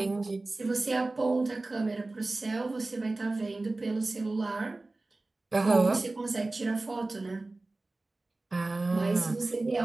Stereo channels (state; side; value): quieter; left; 3.1 dB